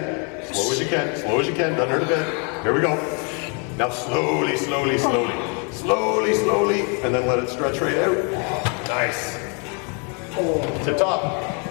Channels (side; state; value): right; quieter; 37.1 dB